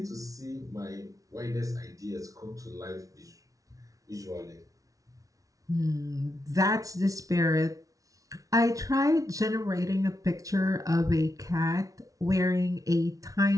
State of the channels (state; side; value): late; left; 0.17 ms